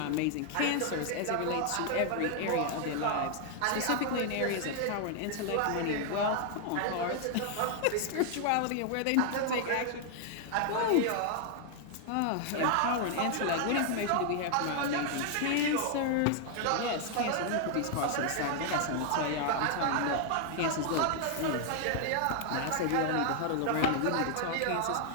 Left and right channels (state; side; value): different; both; correlation 0.00